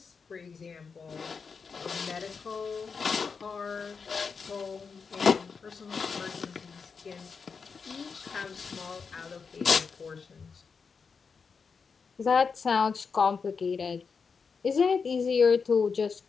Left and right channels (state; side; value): quieter; right; 5.4 dB